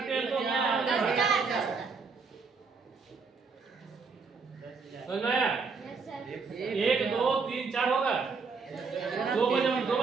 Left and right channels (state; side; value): quieter; left; 4.8 dB